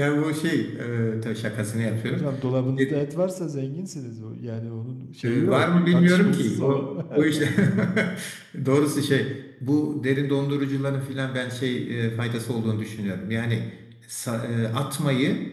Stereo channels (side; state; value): both; identical; correlation 1.00